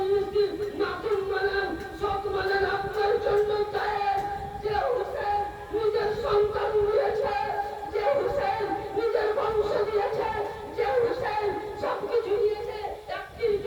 দিন মাখন বানান, সব বানান আপনার জন্য চায়। যে হুসেন নিজের সন্তান দিয়েছে, যে হুসেন নিজের বংশ দিয়েছে, যে হুসেন সবকিছু দিয়েছে, একটির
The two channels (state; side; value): identical; both; correlation 1.00